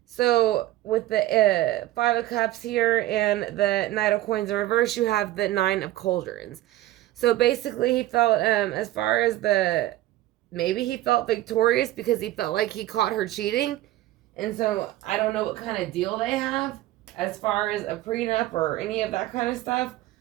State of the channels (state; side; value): quieter; left; 15.4 dB